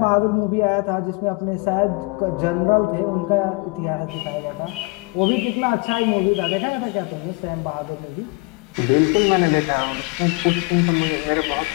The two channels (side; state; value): right; quieter; 27.2 dB